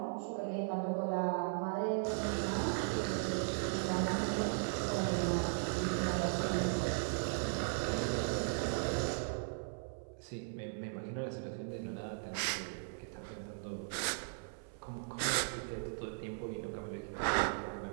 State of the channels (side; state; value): left; silent; 53 dB below the other